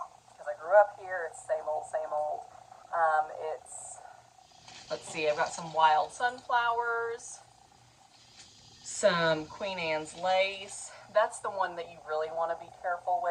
because I grew up here. It's same old, same old. Let's see, I've got some wild sunflowers, some Queen Anne's lace. That's the one that you really want to be careful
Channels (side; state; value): both; identical; correlation 1.00